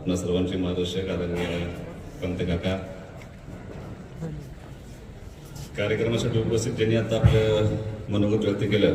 सर्वांचे मार्गदर्शक आदरणीय पंत काका, कार्यक्रमासाठी उपस्थित ज्यांनी आता आपलं मनोगत व्यक्त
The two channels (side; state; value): both; identical; correlation 1.00